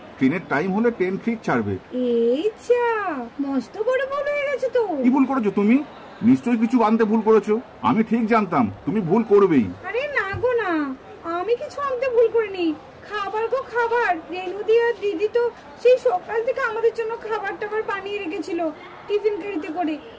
ট্রেনের টাইম হলে ট্রেন ঠিক ছাড়বে। এই যা, মস্ত বড় ভুল হয়ে গেছে তো। কি ভুল করেছো তুমি? নিশ্চয়ই কিছু আনতে ভুল করেছো, আমি ঠিক জানতাম তুমি ভুল করবেই। আরে না গো না, আমি কিছু আনতে ভুল করিনি। খাবার গো খাবার, রেনুদি আর দিদি তো সেই সকাল থেকে আমাদের জন্য খাবার টাবার বানিয়ে রেখেছিল টিফিন গাড়িতে করে।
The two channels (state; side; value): identical; both; correlation 1.00